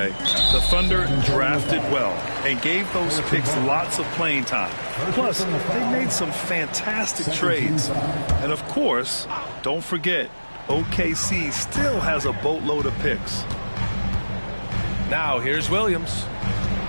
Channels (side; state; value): both; inverted; correlation -1.00